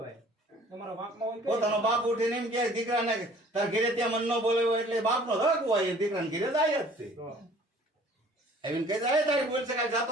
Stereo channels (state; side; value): normal; both; correlation 0.52